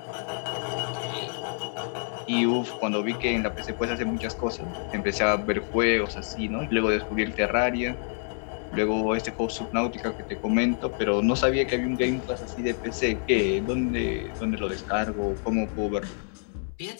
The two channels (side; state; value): right; silent; 60 dB below the other